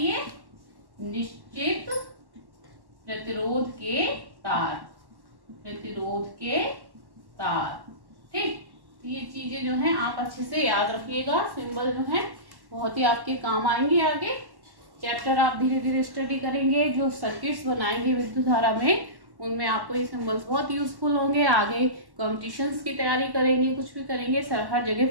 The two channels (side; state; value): left; late; 1.1 ms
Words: ये, निश्चित प्रतिरोध के तार, प्रतिरोध के तार, ठीक। ये चीजें जो हैं आप अच्छे से याद रखिएगा। सिंबल जो है बहुत ही आपके काम आएंगे आगे। चैप्टर आप धीरे धीरे स्टडी करेंगे, जो सर्किट्स बनाएंगे विद्युत धारा में, उनमें आपको ये सिंबल्स बहुत यूजफुल होंगे। आगे कॉम्पिटिशन्स की तैयारी करेंगे, कुछ भी करेंगे, हर जगह